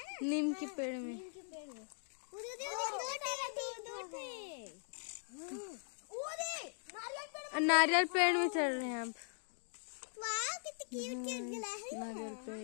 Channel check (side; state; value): right; silent; digital silence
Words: नीम के पेड़ में। नीम के पेड़ में नारियल पेड़ में चढ़ रहे हैं अब। वाह कितनी क्यूट क्यूट गिलहरी है। नारियल